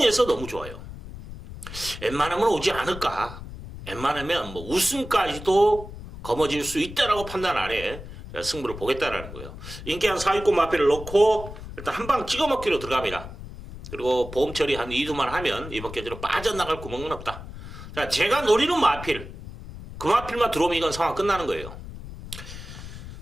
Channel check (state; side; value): noise; left; rumble, 12 dB below the sound